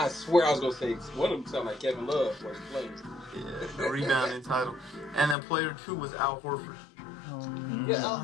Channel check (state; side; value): drops out; right; at 5.4 s